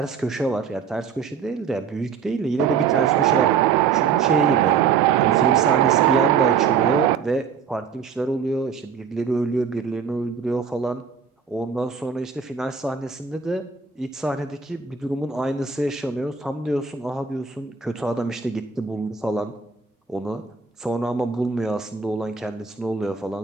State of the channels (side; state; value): left; quieter; 6.3 dB